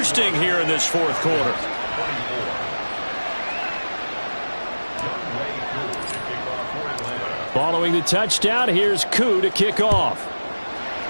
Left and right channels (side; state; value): both; inverted; correlation -1.00